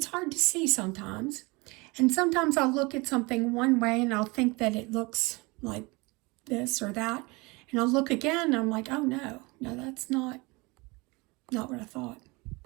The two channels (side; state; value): left; quieter; 25.4 dB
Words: hard to see sometimes. And sometimes I'll look at something one way and I'll think that it looks like this or that. And I'll look again and I'm like, oh no, that's not what I thought.